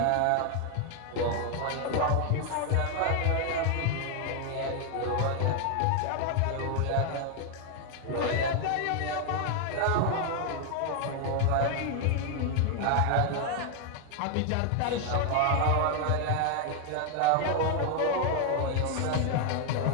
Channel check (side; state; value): both; different; correlation 0.00